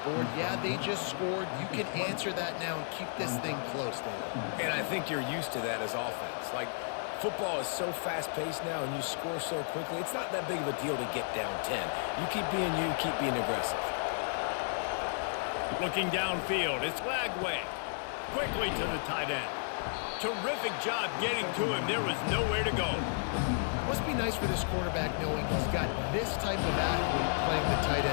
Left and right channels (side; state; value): right; silent; 56 dB below the other